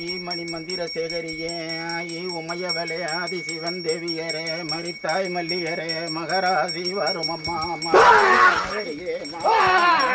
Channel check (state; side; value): identical; both; correlation 1.00